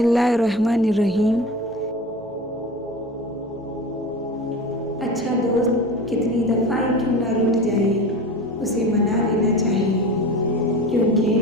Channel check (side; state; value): both; normal; correlation 0.32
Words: अच्छा दोस्त कितनी दफ़ा ही क्यों ना रूठ जाए, उसे मना लेना चाहिए, क्योंकि